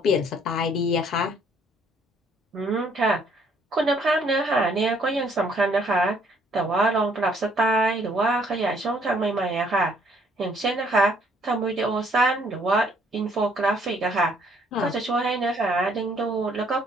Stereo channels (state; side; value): normal; both; correlation 0.65